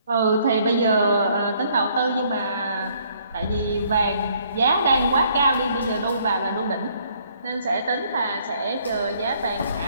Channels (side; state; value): both; inverted; correlation -0.65